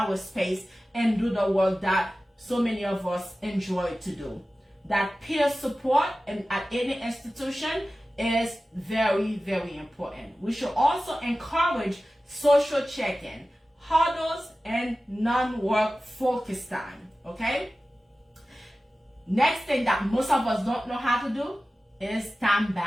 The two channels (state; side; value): normal; both; correlation 0.95